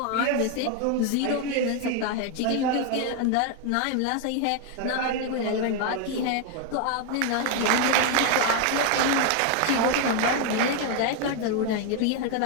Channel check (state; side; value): different; both; correlation 0.01